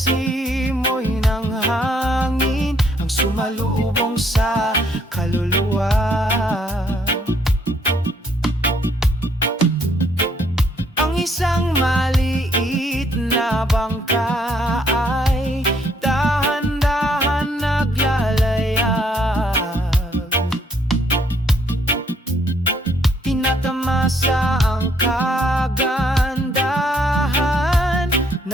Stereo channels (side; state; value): both; normal; correlation 0.68